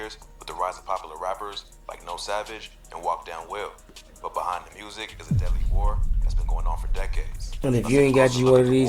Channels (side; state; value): both; identical; correlation 1.00